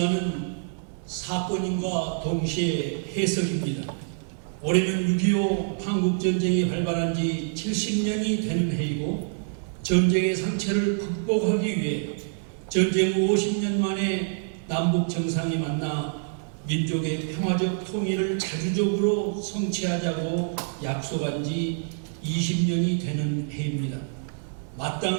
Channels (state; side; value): silent; left; digital silence